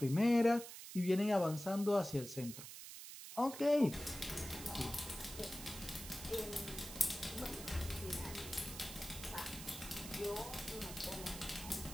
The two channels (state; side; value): noise; right; hiss, 11 dB below the sound